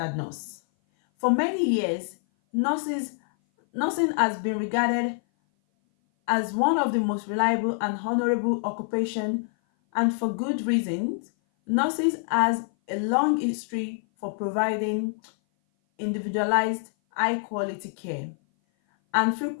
nurse. For many years, nursing has been regarded as one of the most reliable and honorable occupations, and for good reasons. Nurses has a long history for providing individualized, high-quality care, and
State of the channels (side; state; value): right; silent; 57 dB below the other